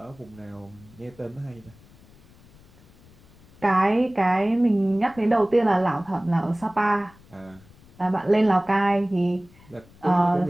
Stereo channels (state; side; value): noise; left; rumble, 26 dB below the sound